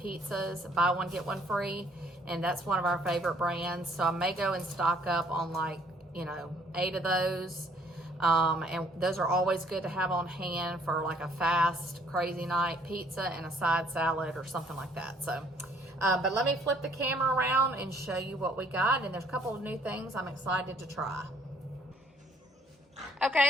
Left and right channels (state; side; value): normal; both; correlation 0.62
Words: buy one get one free. And that's one of our favorite brands. So I may go and stock up on 8 of those. And those are always good to have on hand for like a fast, crazy night pizza and a side salad or something like that. So, but let me flip the camera around and show you what we got. And there's a couple of new things I'm excited to try.